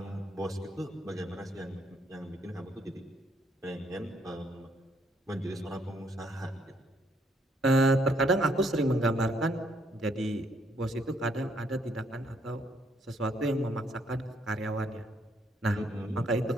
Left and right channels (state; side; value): normal; both; correlation 0.70